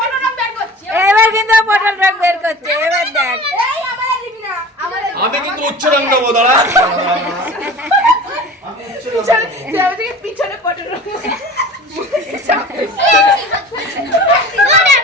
এবার কিন্তু পটল রং বের করছে। এবার দেখ, আমি কিন্তু উচ্চ রং দেবো, দাঁড়া পিছনে পটল রং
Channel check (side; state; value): both; normal; correlation 0.39